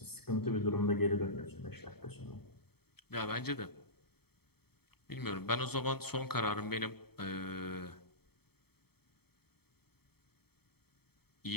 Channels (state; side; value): late; right; 0.96 ms